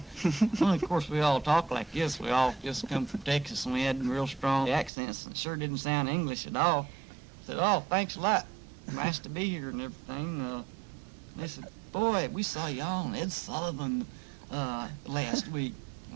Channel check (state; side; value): drops out; left; at 4.9 s